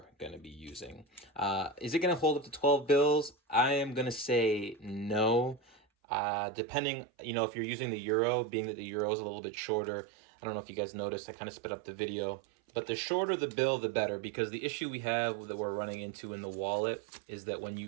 going to be using. Is it going to hold up to 12 bills? I am going to say no. Depending, if you're using the euro, being that the euro is a little bit shorter, I don't know if you guys noticed, I kind of sped up the video. But the shorter the bill, the better, because the issue we have that we're running into in the wallet is that when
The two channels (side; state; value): left; drops out; at 5.8 s